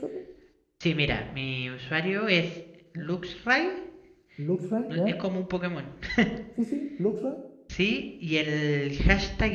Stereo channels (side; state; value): both; identical; correlation 1.00